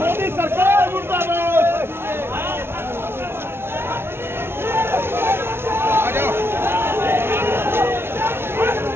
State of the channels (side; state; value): left; late; 0.12 ms